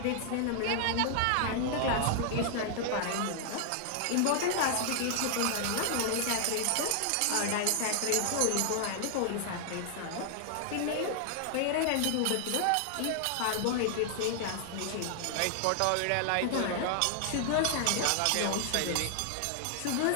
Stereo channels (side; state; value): both; different; correlation 0.00